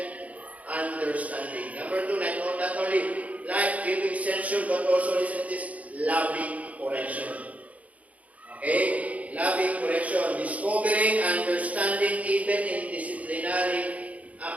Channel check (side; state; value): left; late; 0.069 ms